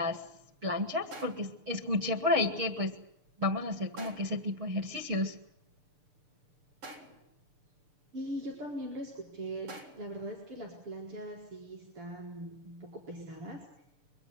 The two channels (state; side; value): late; left; 6.8 ms